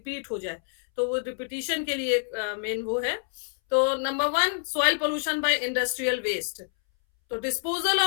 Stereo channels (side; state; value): right; silent; 60 dB below the other